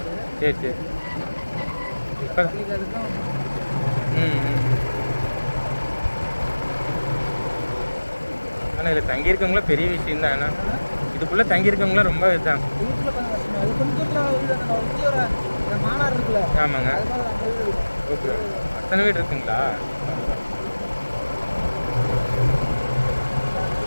சரி சரி. இப்போ ஆனால் இதில் தங்கியிருக்கவங்களாம் பெரிய விஷயம் தான். ஆனால் இதுக்குள்ளே தங்கியிருக்கவங்களாம் ரொம்ப இதுதான். மாநாடு இருக்குல்ல? ஆமாங்க. ஓகே. அத்தனை வீடு இருக்குங்களா?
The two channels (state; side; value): inverted; both; correlation -1.00